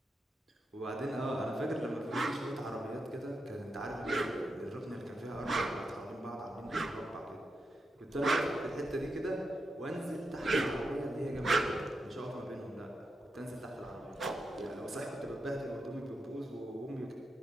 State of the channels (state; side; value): normal; both; correlation 0.86